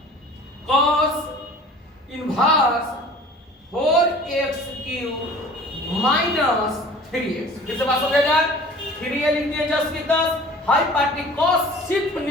cos inverse 4x cube minus 3x। फिर से बात हो जाएगा, 3a लिख दिए जस्ट की 10, हाई पार्टी cos सिर्फ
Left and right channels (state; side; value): normal; both; correlation 0.45